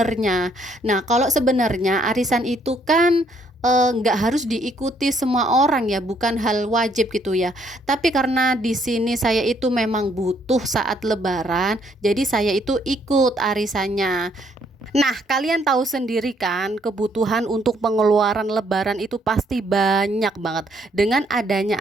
Nah, kalau sebenarnya arisan itu kan nggak harus diikuti semua orang ya, bukan hal wajib gitu ya. Tapi karena di sini saya itu memang butuh saat Lebaran, jadi saya itu ikut arisannya. Nah, kalian tahu sendiri kan, kebutuhan untuk pengeluaran Lebaran itu pasti banyak banget. Dengan adanya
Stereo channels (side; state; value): both; normal; correlation 0.68